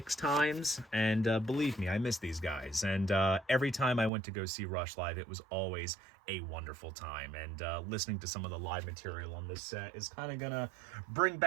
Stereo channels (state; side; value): drops out; left; at 4.1 s